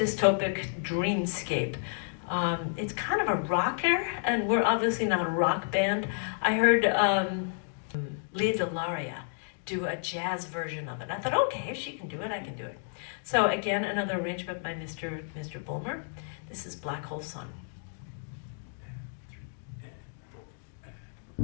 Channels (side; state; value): right; silent; digital silence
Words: dreamscape. It's kind of a rocker, and we're obviously not a rock band. I heard Leah Delaria do a jazz version of it. I thought, okay, if she can do it, I can do it. So again, another arrangement by Mr. Bulmer. This is Black Hole Sun.